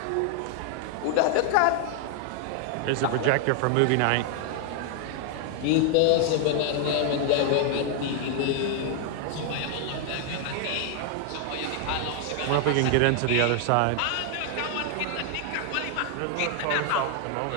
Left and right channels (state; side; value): different; both; correlation 0.00